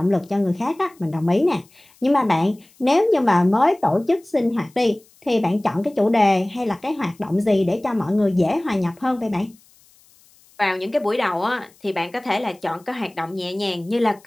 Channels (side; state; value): left; noise; hiss, 30 dB below the sound